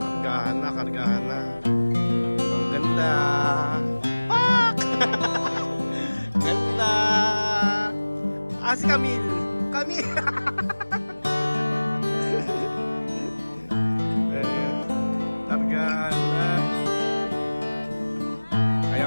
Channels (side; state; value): both; inverted; correlation -1.00